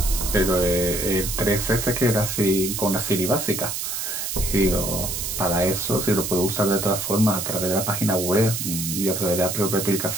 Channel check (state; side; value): noise; right; hiss, 3 dB below the sound